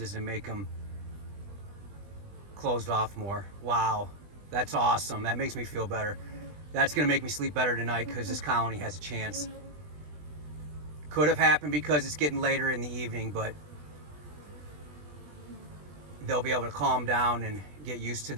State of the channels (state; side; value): late; left; 20 ms